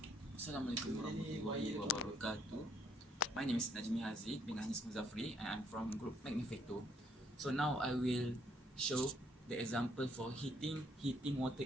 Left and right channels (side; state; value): both; normal; correlation 0.68